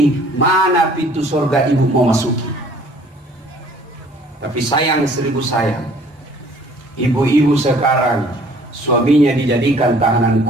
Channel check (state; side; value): normal; both; correlation 0.55